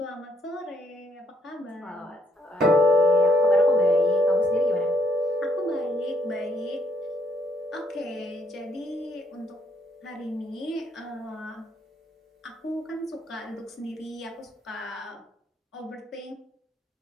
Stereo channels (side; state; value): both; normal; correlation 0.71